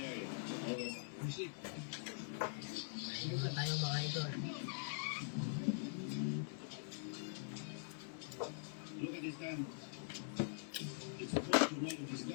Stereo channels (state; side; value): silent; right; digital silence